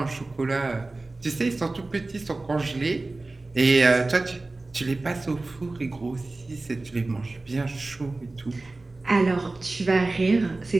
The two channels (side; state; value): left; quieter; 3.2 dB